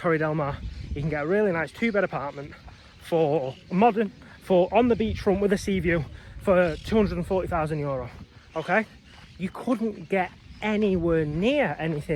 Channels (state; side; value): identical; both; correlation 1.00